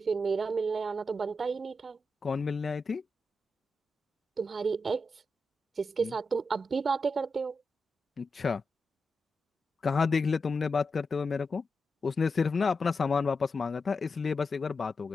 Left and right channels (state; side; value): normal; both; correlation 0.88